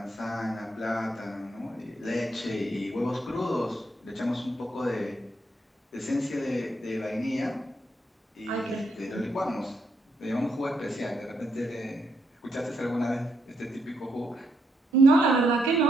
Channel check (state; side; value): normal; both; correlation 0.78